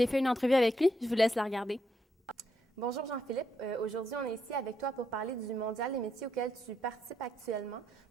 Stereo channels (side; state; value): both; normal; correlation 0.78